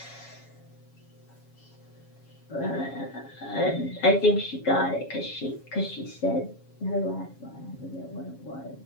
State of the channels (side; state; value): right; late; 7.3 ms